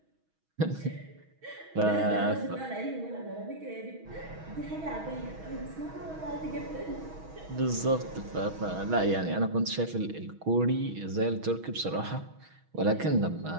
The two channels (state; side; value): late; left; 6.2 ms